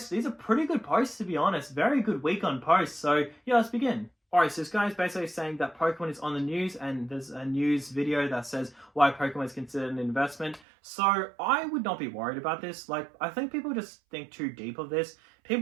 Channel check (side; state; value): left; drops out; at 10.6 s